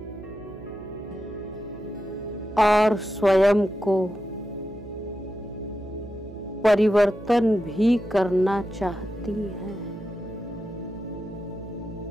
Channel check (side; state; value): right; noise; hum, 16 dB below the sound